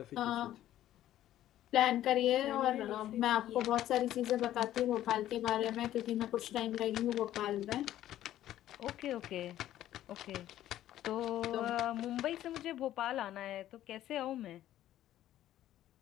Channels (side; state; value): right; quieter; 12.9 dB